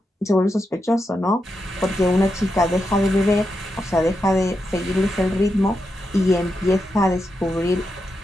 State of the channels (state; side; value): normal; both; correlation 0.86